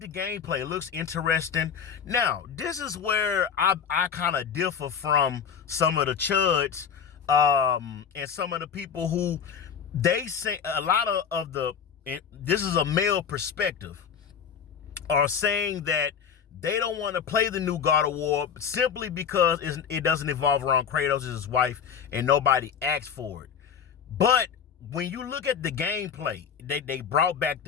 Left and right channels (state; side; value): quieter; right; 7.4 dB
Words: the gameplay. It looks interesting. Now, this is where I kind of differ from some of the chuds and some of the people who they say a lot of the, this is a male perspective, are saying that they don't want to play the new God of War simply because it doesn't evolve around Kratos and his wife and nobody asked for it. But when you look at the gameplay, they brought back